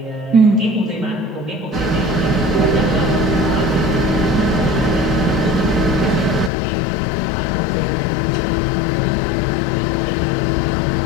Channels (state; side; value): drops out; right; at 6.5 s